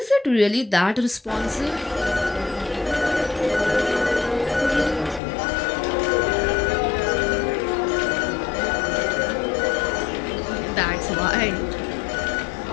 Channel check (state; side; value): drops out; right; at 5.2 s